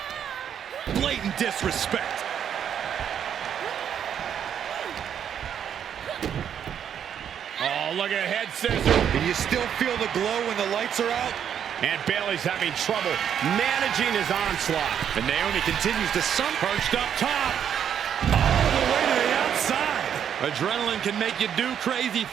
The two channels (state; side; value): quieter; left; 8.8 dB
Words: Blatant disrespect. Oh, look at head scissor. Can you still feel the glow when the lights are out? And Bayley's having trouble managing his onslaught. And Naomi continues to perched up top. All the way to the outside. Adrenaline can make you do crazy